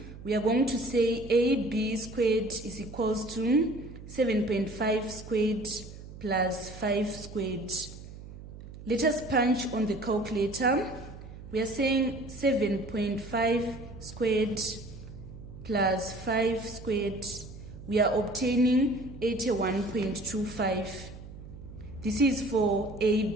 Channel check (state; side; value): noise; right; hum, 14 dB below the sound